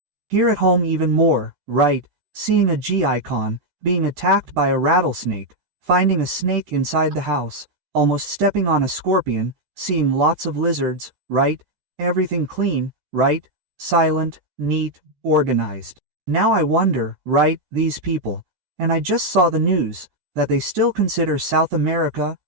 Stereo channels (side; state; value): left; late; 13 ms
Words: Here at home even more, right, seeing a G icon, being attacked by a rattlesnake, finding a snake inside the house, almost stepping on a scorpion, seeing lots of lizards, right, everything clean, right, silent, neat, organized. Now I wonder, right, these people, and I just saw the news, that they still consider South America,